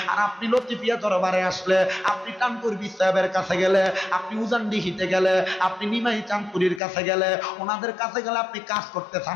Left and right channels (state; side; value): drops out; right; at 6.8 s